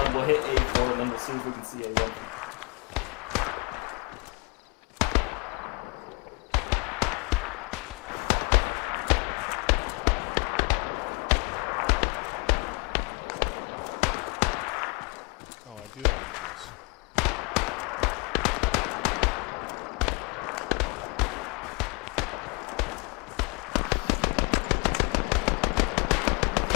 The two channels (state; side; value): quieter; right; 30.7 dB